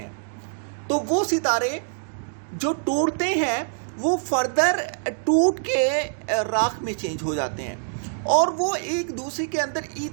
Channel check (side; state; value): left; silent; digital silence